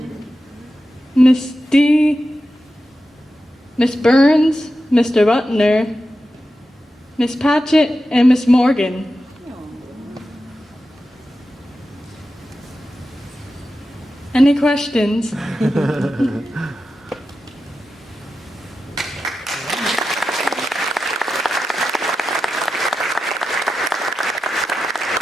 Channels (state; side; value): normal; both; correlation 0.91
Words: Miss D, Miss Burns, Mr. Butner, Miss Patchett, and Miss Morgan. Any questions?